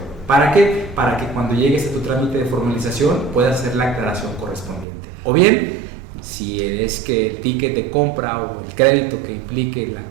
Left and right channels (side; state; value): left; drops out; at 4.9 s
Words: ¿Para qué? Para que cuando llegues a tu trámite de formalización puedas hacer la aclaración correspondiente. O bien, si es que el ticket de compra o el crédito que implique la